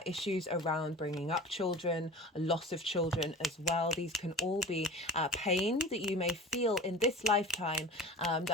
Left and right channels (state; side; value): normal; both; correlation 0.37